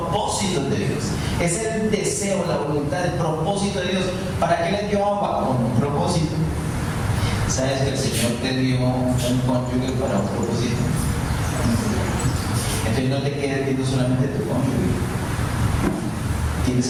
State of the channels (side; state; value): both; identical; correlation 1.00